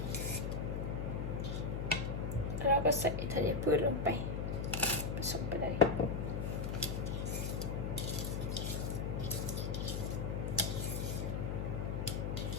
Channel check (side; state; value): left; noise; hum, 1 dB below the sound